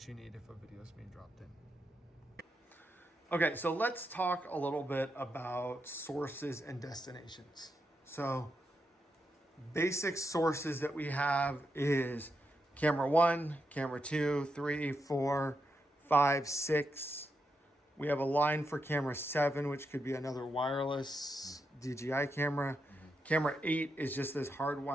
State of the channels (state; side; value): normal; both; correlation 0.84